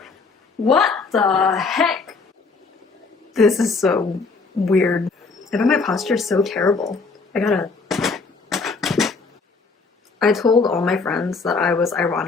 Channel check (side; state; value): right; quieter; 4.3 dB